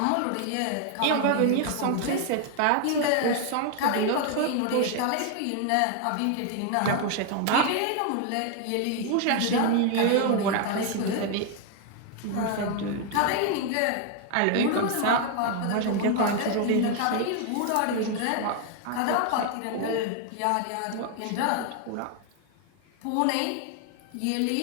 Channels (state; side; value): different; both; correlation 0.00